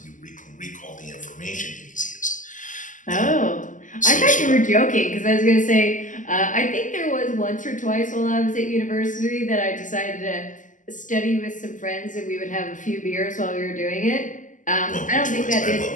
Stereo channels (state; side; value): late; right; 0.37 ms